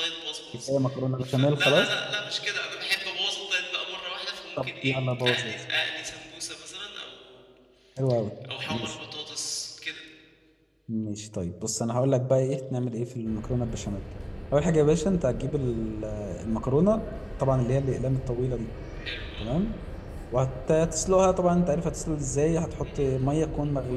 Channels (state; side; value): identical; both; correlation 1.00